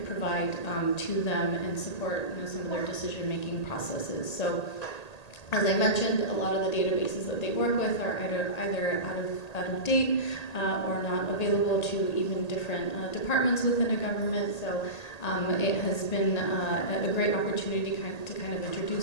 provide to them and support some of their decision-making processes. So, as I mentioned, a lot of the databases that they work with are either out of date or not available to even different departments within a government. So it has been a great opportunity to kind of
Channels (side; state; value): right; late; 1.8 ms